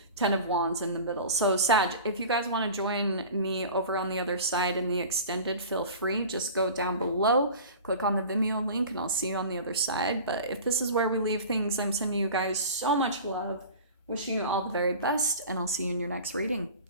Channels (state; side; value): inverted; both; correlation -0.37